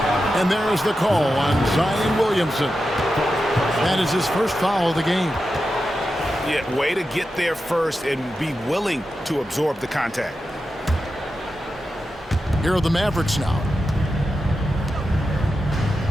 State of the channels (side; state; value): both; normal; correlation 0.90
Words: And there is the call on Zion Williamson. That is his first foul of the game. Yeah, way to get there first and be willing to absorb the contact. Here are the Mavericks now.